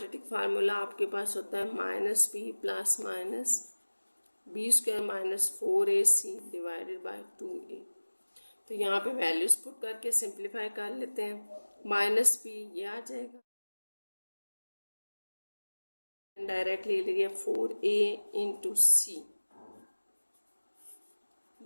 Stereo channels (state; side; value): inverted; both; correlation -1.00